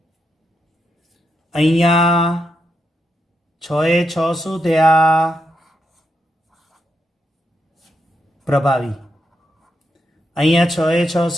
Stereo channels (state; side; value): normal; both; correlation 0.82